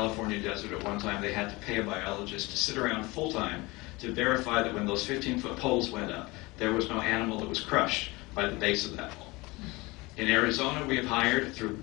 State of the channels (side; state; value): right; quieter; 23.2 dB